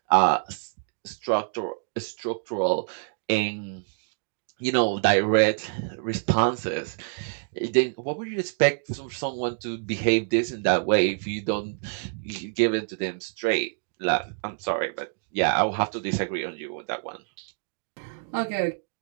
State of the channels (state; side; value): silent; left; digital silence